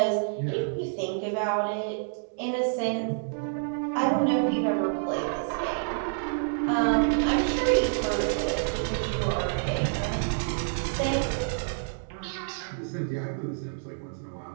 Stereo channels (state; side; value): silent; left; digital silence